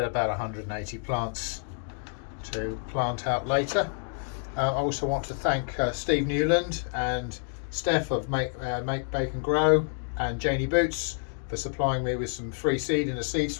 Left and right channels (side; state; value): right; silent; 59 dB below the other